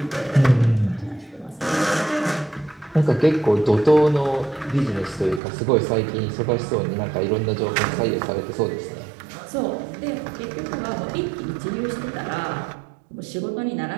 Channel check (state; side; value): drops out; left; at 5.4 s